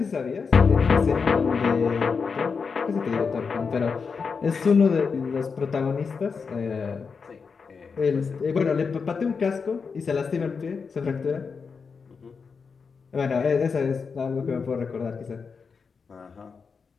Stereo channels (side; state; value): right; quieter; 5.4 dB